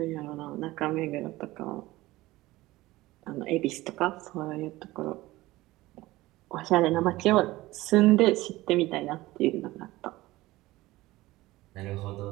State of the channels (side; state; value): left; quieter; 18.3 dB